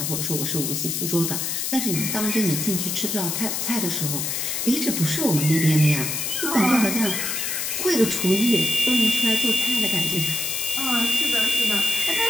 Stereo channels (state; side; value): noise; left; hiss, 1 dB below the sound